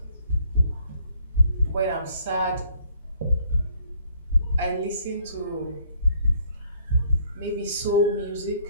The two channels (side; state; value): both; inverted; correlation -0.63